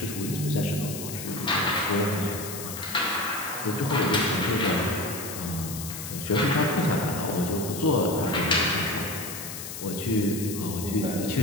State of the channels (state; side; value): noise; left; hiss, 8 dB below the sound